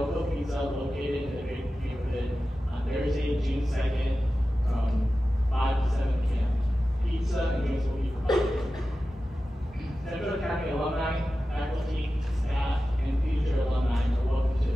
Pizza, located in the Great neighborhood on Thursday, June 2nd, from 5 to 7 p.m. Pizza and drinks will be provided. Central Academy alumni, faculty, staff, and future alumni are welcome to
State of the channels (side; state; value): both; normal; correlation 0.94